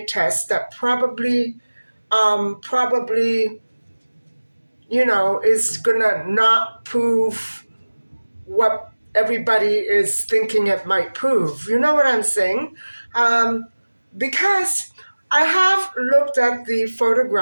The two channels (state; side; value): inverted; both; correlation -1.00